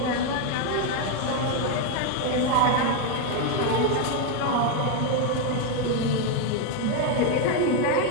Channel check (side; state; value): both; different; correlation 0.01